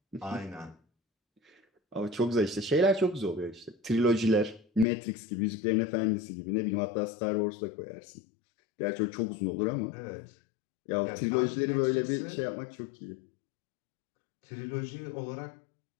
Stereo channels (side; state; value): right; drops out; at 4.9 s